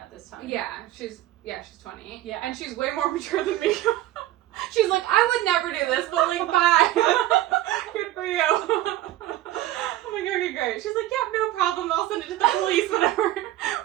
this time. Yeah, she's 20. Yeah. And she's way more mature than me. She's like, I would never do this, but, like, bye. Good for you. I'm like, okay, great. She's like, yeah, no problem. I'll send it to the police whenever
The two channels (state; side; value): quieter; left; 14.7 dB